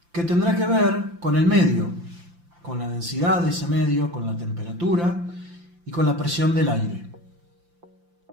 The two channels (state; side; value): late; left; 5.8 ms